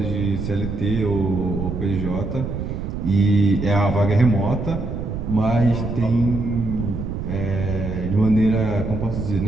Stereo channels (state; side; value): noise; right; rumble, 5 dB below the sound